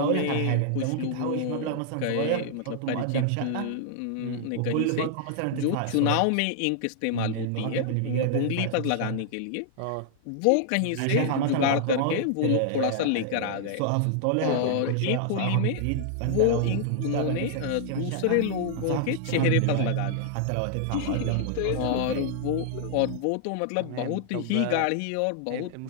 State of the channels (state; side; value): different; both; correlation -0.01